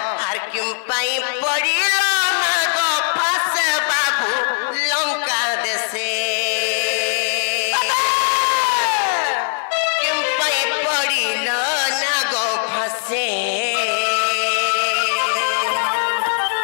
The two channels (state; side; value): silent; right; digital silence